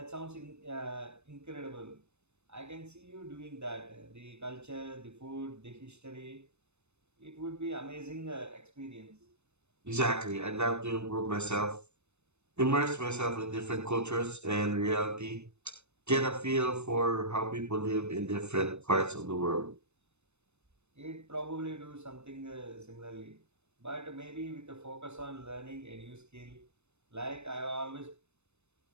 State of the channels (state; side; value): late; left; 0.81 ms